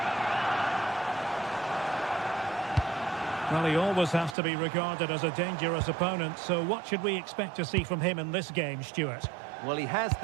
Well, he always has to be regarded as a dangerous opponent, so what should we expect to see from him in this game, Stuart? Well, he has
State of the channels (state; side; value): drops out; left; at 4.4 s